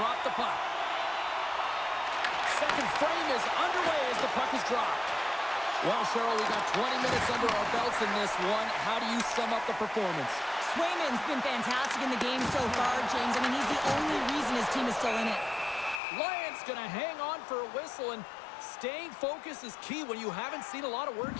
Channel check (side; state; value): right; drops out; at 16.0 s